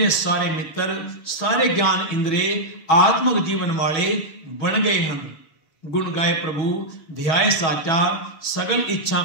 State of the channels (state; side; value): late; right; 6.2 ms